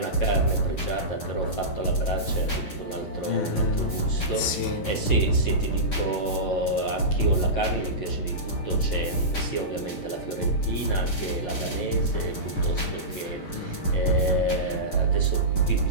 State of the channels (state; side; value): late; right; 10 ms